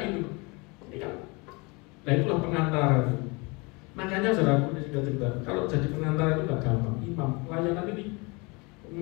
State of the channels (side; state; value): right; quieter; 28.0 dB